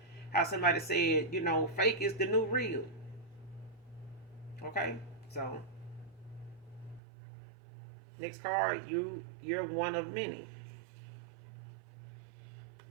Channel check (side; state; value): left; drops out; at 7.0 s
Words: how somebody said, fake is the new real. Okay, so next card, you're one of many.